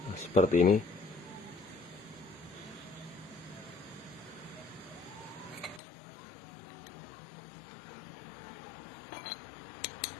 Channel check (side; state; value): right; drops out; at 5.8 s